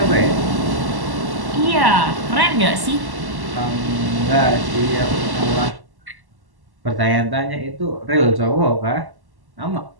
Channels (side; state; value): left; late; 1.1 ms